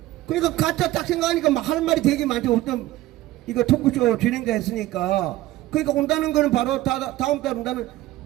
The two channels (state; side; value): quieter; left; 16.4 dB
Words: 그러니까 가짜 딱 생각하니까 막 할 말이 되게 많죠. 어떤 이거 토크쇼 진행자 했으니까. 그러니까 온다는 거는 바로 다음 달 온다는